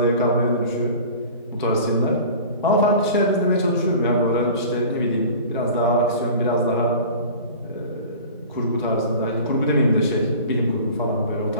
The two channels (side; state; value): both; inverted; correlation -0.40